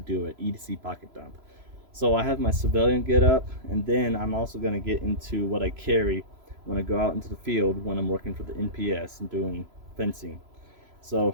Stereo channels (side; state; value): left; late; 3.0 ms